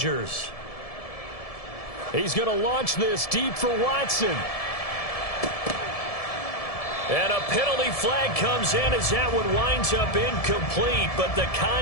He's going to launch this deep for Watson. And a penalty flag comes in as that one winds up incomplete, but the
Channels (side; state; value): right; late; 1.7 ms